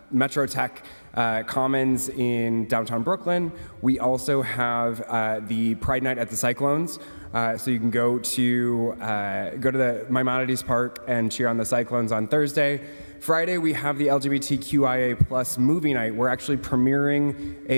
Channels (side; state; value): both; inverted; correlation -1.00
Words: Metro Tech Commons in downtown Brooklyn. We also have the Pride Night at the Cyclones. So you can go to the Maimonides Park and cheer on the Cyclones on Thursday. Friday, we have the LGBTQIA plus movie night. We're actually premiering